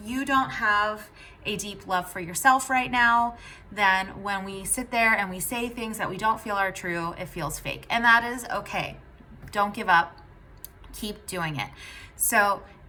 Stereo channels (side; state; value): both; identical; correlation 1.00